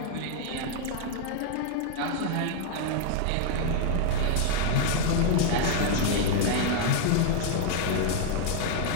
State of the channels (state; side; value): different; both; correlation 0.00